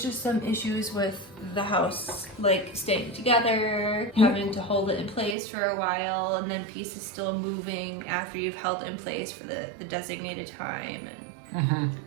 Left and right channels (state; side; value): drops out; left; at 5.4 s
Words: just some issues with the house, like staying together, having to hold it in place for a while, and then pieces still moving after you've held it in place for the designated time, and